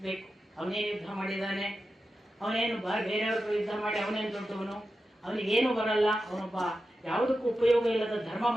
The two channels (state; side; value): normal; both; correlation 0.91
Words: ಅವನೇನು ಯುದ್ಧ ಮಾಡಿದ್ದಾನೆ, ಅವನೇನು ಬೇರೆಯವ್ರಿಗೂ ಯುದ್ಧ ಮಾಡಿ ಅವನೇನು ದೊಡ್ಡವನು, ಅವನಿಗೇನು ಬರಲ್ಲ, ಅವನೊಬ್ಬ ಯಾವುದಕ್ಕೂ ಉಪಯೋಗ ಇಲ್ಲದ ಧರ್ಮ